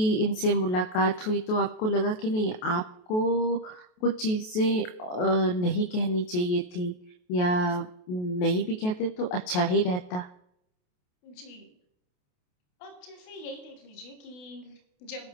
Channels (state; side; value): late; right; 28 ms